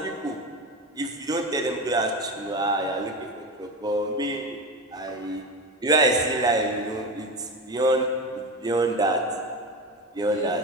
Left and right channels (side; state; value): both; normal; correlation 0.22